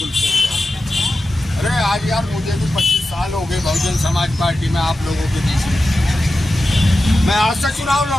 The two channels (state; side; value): normal; both; correlation 0.92